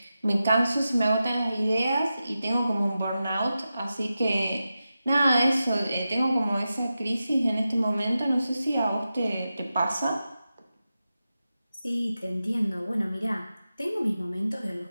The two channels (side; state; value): both; inverted; correlation -0.92